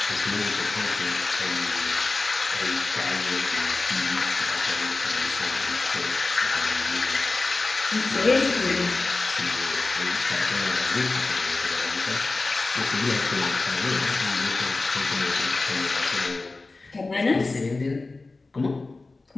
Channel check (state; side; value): quieter; right; 3.5 dB